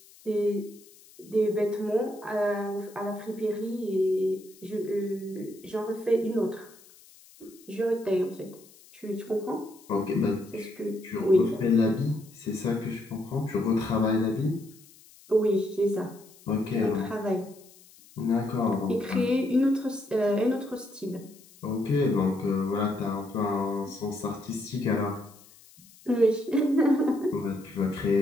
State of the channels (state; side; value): noise; left; hiss, 25 dB below the sound